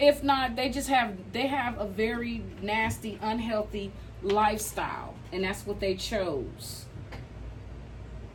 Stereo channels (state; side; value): identical; both; correlation 1.00